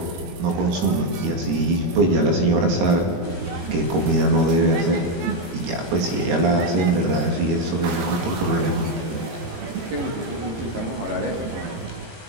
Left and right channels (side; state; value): left; late; 17 ms